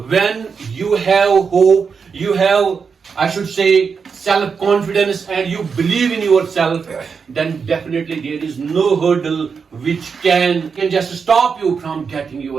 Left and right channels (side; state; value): left; quieter; 5.8 dB